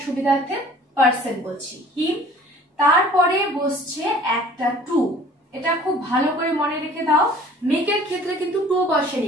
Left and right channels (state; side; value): normal; both; correlation 0.50